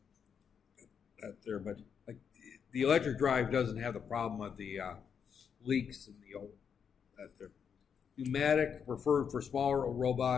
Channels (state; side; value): quieter; right; 7.1 dB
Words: But like the electric drive doesn't have the problem of the leaks in the old that there. Pneumatic preferred for smaller